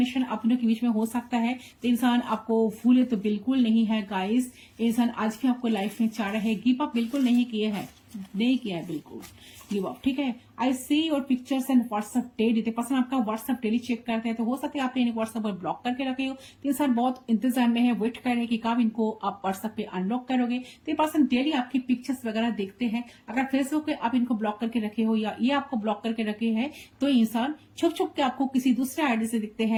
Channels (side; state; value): both; identical; correlation 1.00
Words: आप दोनों के बीच में हो सकता है। तो इंसान आपको भूले तो बिल्कुल नहीं है गाइस, इंसान आज भी आपको लाइफ में चाह रहे हैं, गिव अप बिल्कुल नहीं किया है बिल्कुल गिव अप, ठीक है। I see your pictures and WhatsApp daily. Person आपका व्हाट्सएप डेली चेक करते हैं, तो हो सकता है आपने इन्हें व्हाट्सएप पर ब्लॉक करके रखे हो, तो इंसान बहुत इंतजार में है, वेट कर रहे हैं कि कब इनको आप व्हाट्सएप पे अनब्लॉक करोगे। तो ये पर्सन डेली आपकी पिक्चर्स वगैरह देखते हैं। अगर फेसबुक पे आप इनको ब्लॉक करके रखे हो या ये आपको ब्लॉक करके रखे हैं, तो इंसान छुप छुप के आपको किसी दूसरे आईडी से दिखते